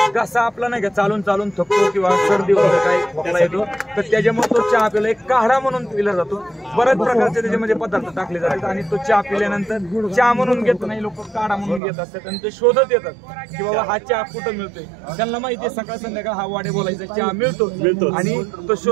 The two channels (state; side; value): drops out; left; at 11.8 s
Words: घसा आपला नाही का चालून चालून थकतो किंवा सर्दी वगैरे काही खोकला येतो तर त्याच्यामुळे तो चहा पिला एक काढा म्हणून पिला जातो। बऱ्याच प्रकारचे त्याच्यामध्ये पदार्थ टाकले जातात आणि तो चहा पिल्यानंतर चहा म्हणून घेत नाही, लोक काढा म्हणून घेत असतात आणि ते शोधत येतात की बाबा हा चहा कुठं मिळतोय। त्यांना माहिती आहे सकाळ संध्याकाळ हा वाडे बोलायचा चहा मिळतो आणि तो